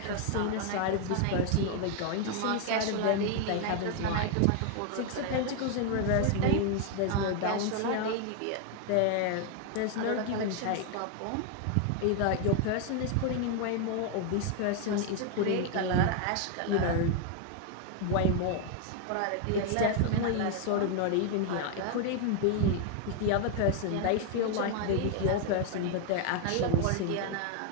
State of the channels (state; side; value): different; both; correlation 0.01